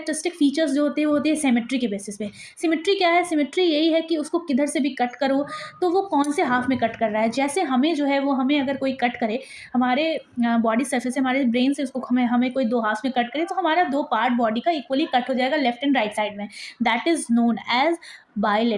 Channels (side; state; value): both; identical; correlation 1.00